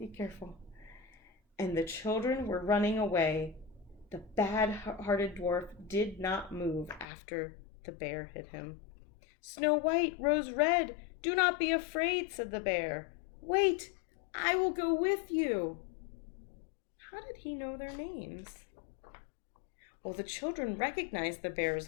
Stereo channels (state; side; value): drops out; right; at 7.1 s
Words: careful. And the children were running away. The bad-hearted dwarf did not move after the bear hit him. "Snow White, Rose Red, do not be afraid," said the bear. "Wait, I will go with you." How did he know their names? Well, the children recognized the bear's